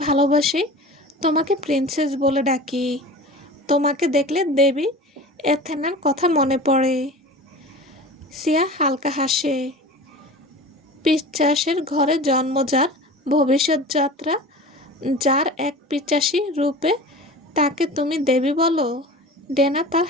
ভালোবাসি তোমাকে প্রিন্সেস বলে ডাকি। তোমাকে দেখলে দেবী এথেনার কথা মনে পড়ে। সিয়া হালকা হাসে। পিচ্চাসের ঘরে জন্ম যার, ভবিষ্যৎ যাত্রা যার এক পিচ্চাসী রূপে, তাকে তুমি দেবী বলো? ডেনা তার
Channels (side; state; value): both; normal; correlation 0.36